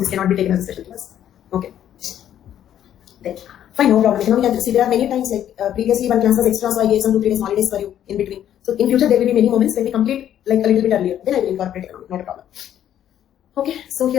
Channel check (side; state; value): right; quieter; 10.7 dB